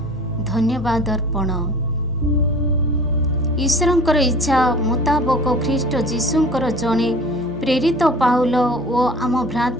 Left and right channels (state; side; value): normal; both; correlation 0.44